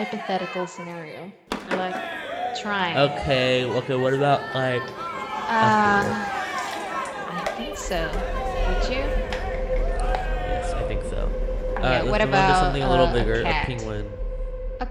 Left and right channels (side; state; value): both; identical; correlation 1.00